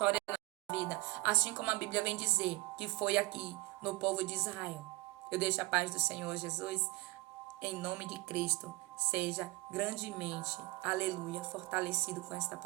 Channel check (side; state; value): left; quieter; 22.8 dB